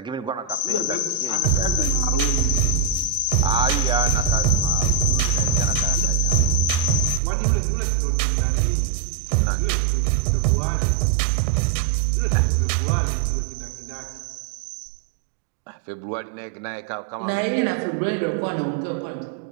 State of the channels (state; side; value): drops out; left; at 7.2 s